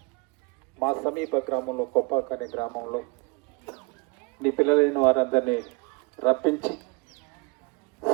మా సమీప గ్రామంలో కొప్పాక అనే గ్రామంలో నీ పిల్లలైన వారందరినీ రప్పించి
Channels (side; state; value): left; quieter; 28.5 dB